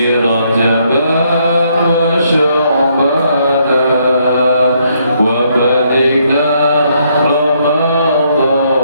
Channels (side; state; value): both; inverted; correlation -0.72